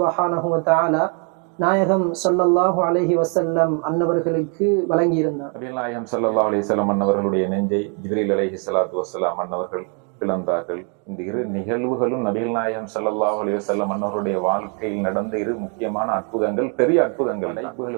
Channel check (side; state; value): left; quieter; 39.3 dB